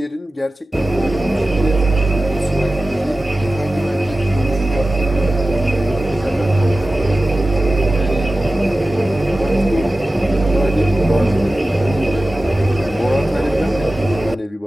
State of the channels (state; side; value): normal; both; correlation 0.95